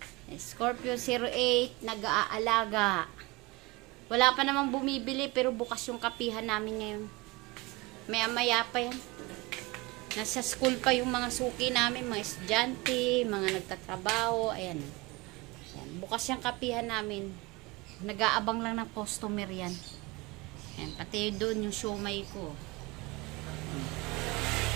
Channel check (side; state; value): left; quieter; 23.5 dB